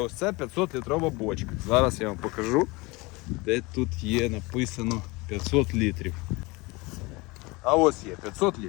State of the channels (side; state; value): right; quieter; 24.4 dB